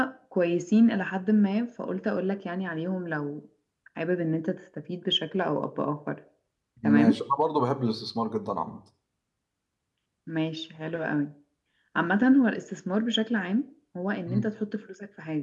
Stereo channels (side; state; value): both; identical; correlation 1.00